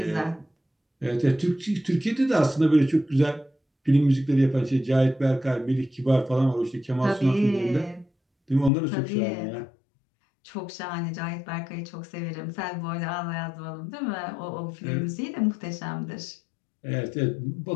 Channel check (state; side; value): drops out; right; at 8.7 s